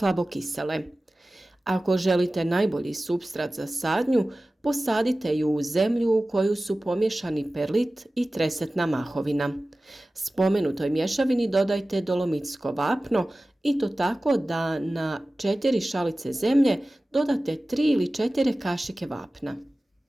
Ako želite najbolji supstrat za sadnju, posadite ju u zemlju u koju su pomiješani perlit i tresetna mahovina. Spomenutoj mješavini dodajte dolomitsko vapno i to tako da na 4 šalice zemlje dodate 3 ili 4 kašike vapna.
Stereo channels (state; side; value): normal; both; correlation 0.97